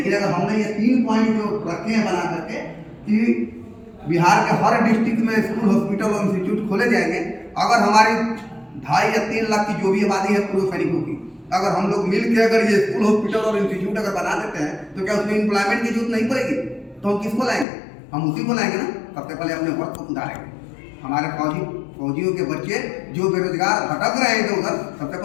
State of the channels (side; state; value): right; drops out; at 17.7 s